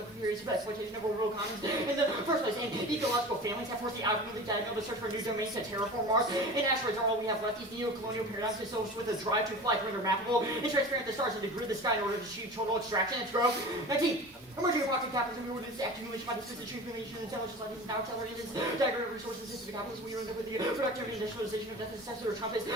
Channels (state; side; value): normal; both; correlation 0.35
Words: of periods of exploitation of orbital commons in the first place. And ecological families have forced the outwardly diagonal to search for new domains to terraform Mars. And asteroids are all we have left. These neo-colonial paradigms associated with a drive to fly to render mappable and transparent the stars and to grid the sky in order to achieve total extraction and growth. 19. Emerging approximate capitalism in order to accumulation by the system accumulation and intelligence like these now accelerated diagram of resources into the capitalism. We end up with the productive industrialization of death and successor of Trump is